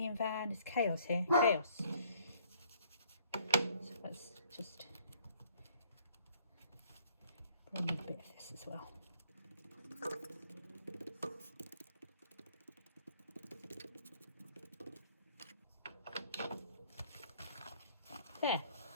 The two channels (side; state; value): both; inverted; correlation -0.61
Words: van. It's chaos here, chaos. So let's just bring in a bit of this as well. There. I